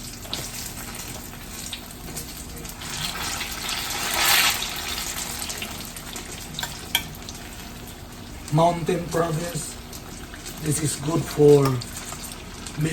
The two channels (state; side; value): identical; both; correlation 1.00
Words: Mountain province, this is good for